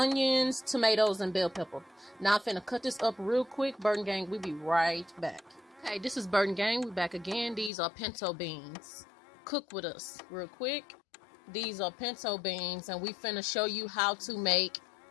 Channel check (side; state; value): right; drops out; at 7.7 s